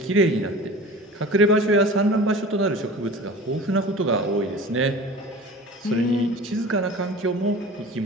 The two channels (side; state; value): both; normal; correlation 0.38